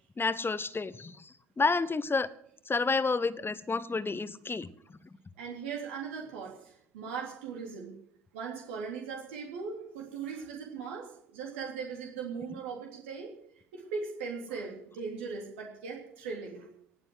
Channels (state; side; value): normal; both; correlation 0.58